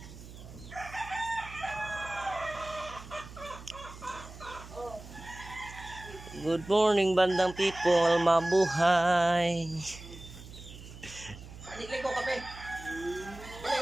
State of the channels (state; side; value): noise; right; hum, 15 dB below the sound